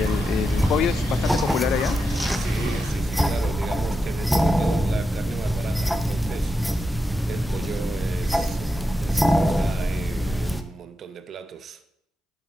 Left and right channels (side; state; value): both; normal; correlation 0.88